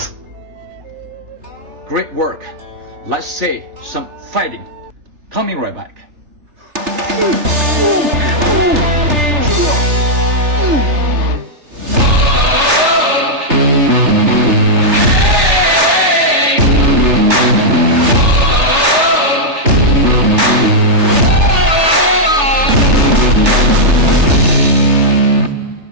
Great work. Let's say some fighting. Coming right back.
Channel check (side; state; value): left; late; 3.3 ms